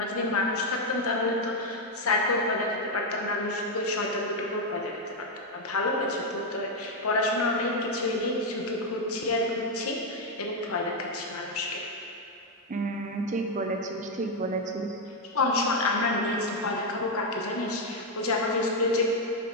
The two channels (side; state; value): both; normal; correlation 0.03